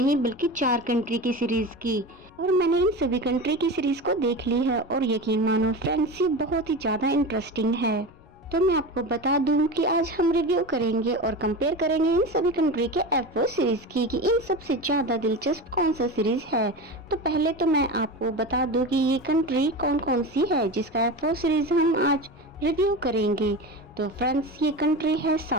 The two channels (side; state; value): left; noise; rumble, 27 dB below the sound